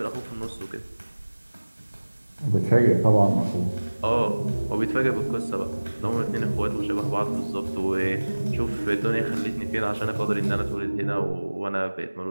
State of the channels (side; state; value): both; inverted; correlation -1.00